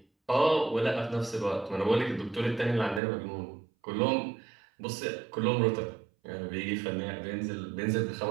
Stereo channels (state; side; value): drops out; left; at 3.0 s